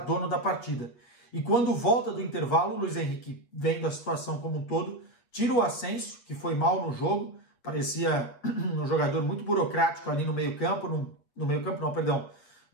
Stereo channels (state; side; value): late; right; 8.3 ms